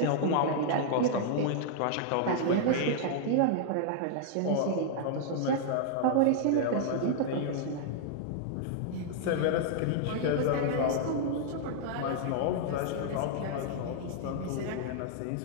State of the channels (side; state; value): both; different; correlation -0.01